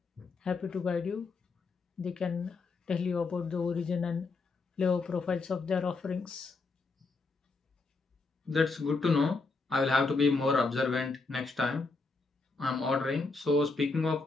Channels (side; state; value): right; quieter; 3.9 dB